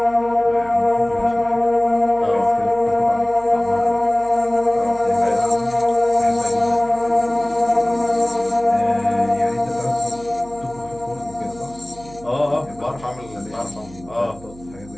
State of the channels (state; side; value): noise; right; hum, 20 dB below the sound